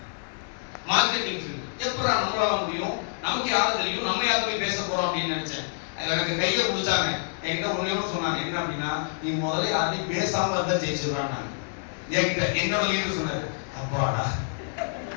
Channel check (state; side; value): silent; right; digital silence